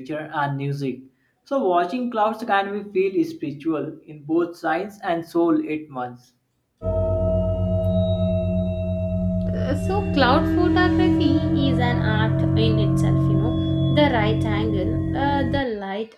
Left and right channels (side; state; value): both; identical; correlation 1.00